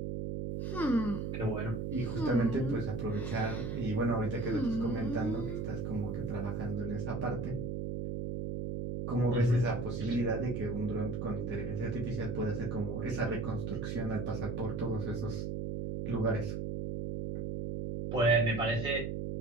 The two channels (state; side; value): noise; right; hum, 3 dB below the sound